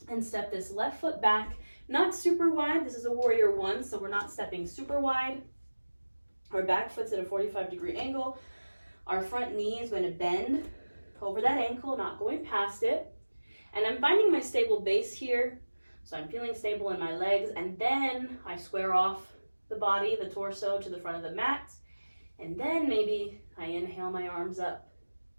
and step this left foot back, not super wide. This is a warrior 1, so we're not stepping super wide. Our back foot's at a 45-degree angle. Our front knee is going to bend over that ankle, not going past it. And I'm finding my stable base here. So I'm feeling stable in my legs. And then I square off the body, the torso, to the front of the mat. And then maybe I inhale my arms up.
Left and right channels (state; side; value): inverted; both; correlation -1.00